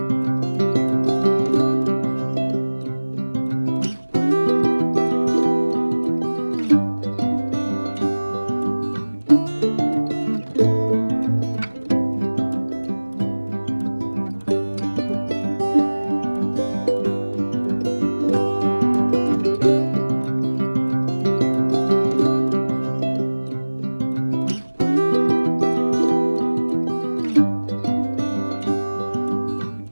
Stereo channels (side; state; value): both; inverted; correlation -1.00